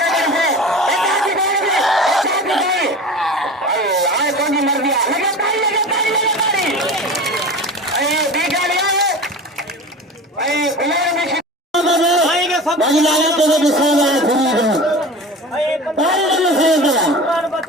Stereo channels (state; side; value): normal; both; correlation 0.34